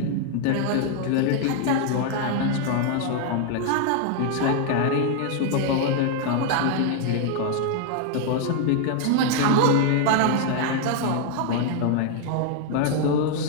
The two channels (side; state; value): both; different; correlation 0.00